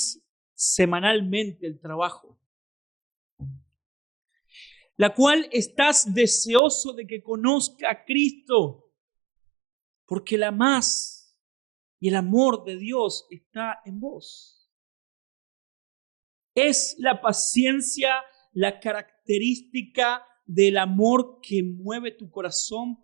semanalmente el trabajo, la cual estás deseoso de que conozca a Cristo, porque la amás y el amor de Dios está en vos. ¿Es la paciencia la característica del amor que mueve tu corazón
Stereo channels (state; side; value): drops out; left; at 6.6 s